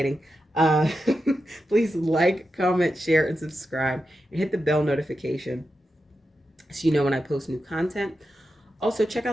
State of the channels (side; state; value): both; normal; correlation 0.89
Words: uh Please like, comment, share, and subscribe, and hit the bell notification so you know when I post new content. Also, check